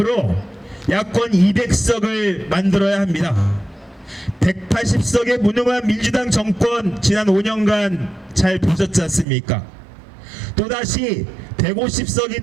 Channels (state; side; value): drops out; left; at 9.2 s